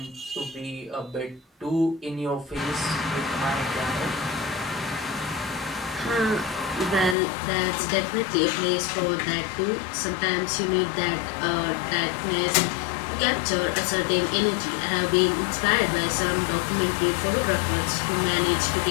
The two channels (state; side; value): drops out; right; at 7.2 s